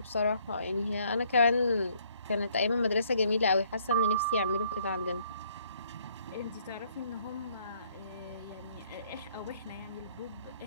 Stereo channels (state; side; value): inverted; both; correlation -0.65